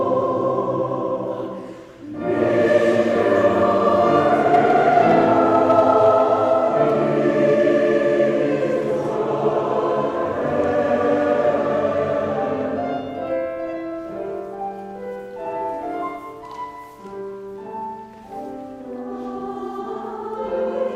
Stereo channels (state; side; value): identical; both; correlation 1.00